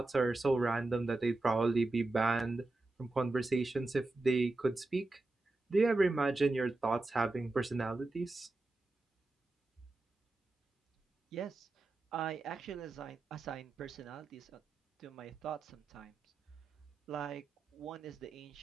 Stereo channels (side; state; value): left; quieter; 3.1 dB